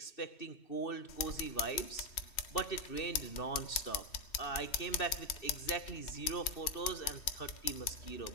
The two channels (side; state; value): right; late; 2.7 ms